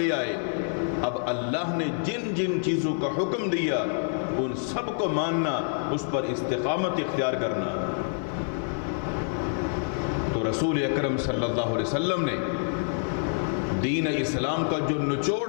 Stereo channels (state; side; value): silent; right; 60 dB below the other